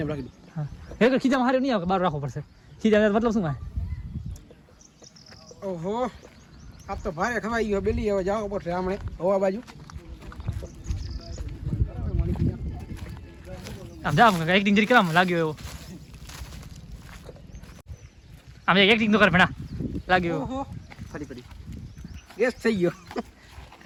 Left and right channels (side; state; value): both; identical; correlation 1.00